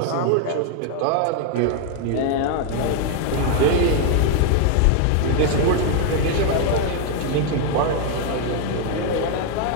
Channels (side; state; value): both; different; correlation 0.00